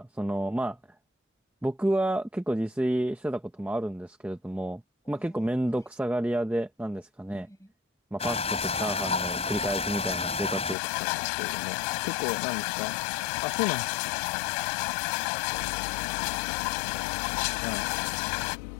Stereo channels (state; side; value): drops out; right; at 10.8 s